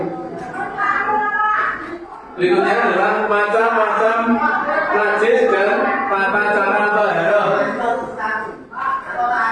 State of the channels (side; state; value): both; identical; correlation 1.00